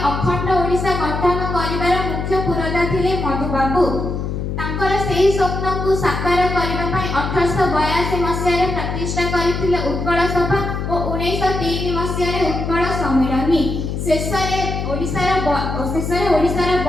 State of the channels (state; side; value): noise; left; hum, 3 dB below the sound